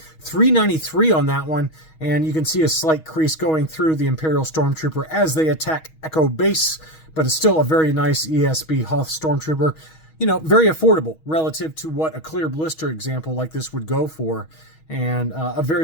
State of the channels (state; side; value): late; right; 6.3 ms